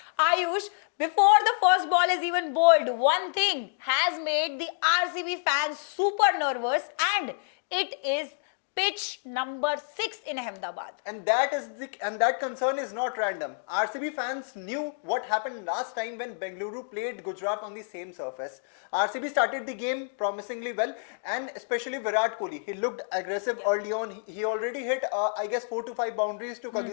Ayush, before the first ball is even bowled, one thing has made the RCB fans super nervous and it is pitch number 6 in Ahmedabad. And that concern is not random. RCB fans knew what happened last time when Bengaluru played Gujarat on the same surface. RCB started the game promisingly well, and especially Virat Kohli. He looked aggressive early on. He already hit, I guess, 4 to 5 boundaries to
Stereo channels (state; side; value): silent; right; digital silence